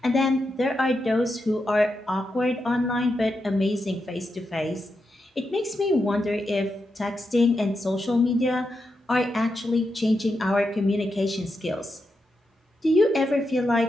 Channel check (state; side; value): normal; both; correlation 0.86